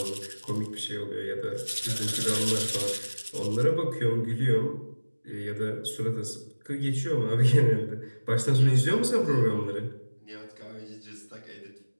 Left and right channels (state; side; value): inverted; both; correlation -1.00